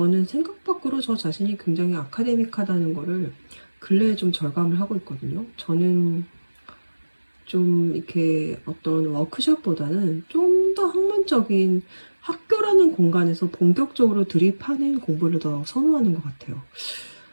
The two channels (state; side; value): inverted; both; correlation -1.00